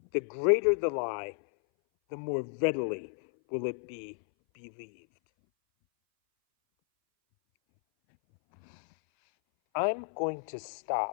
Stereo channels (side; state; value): right; silent; 57 dB below the other